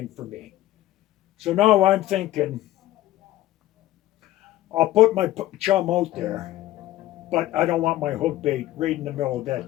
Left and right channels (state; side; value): quieter; right; 15.0 dB